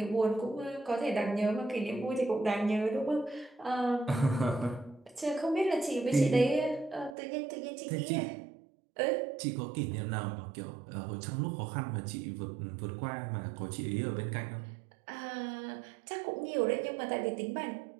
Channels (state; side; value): drops out; left; at 7.2 s